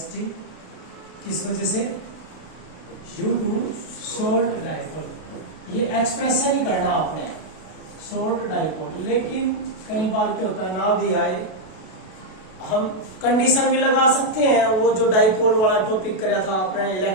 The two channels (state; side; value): late; right; 32 ms